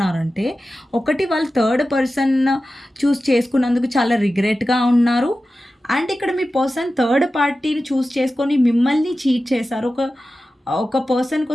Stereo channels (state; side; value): normal; both; correlation 0.94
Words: ఒకటి వాళ్ళు థర్డ్ పర్సన్ చూజ్ చేసుకున్నందుకు చాలా రిగ్రెట్‌గా ఉన్నారు. అండ్ ఇక్కడ మీ పర్సన్ థర్డ్ పార్టీని చూజ్ చేసుకొని మిమ్మల్ని చీట్ చేశారు. ఒక పర్సన్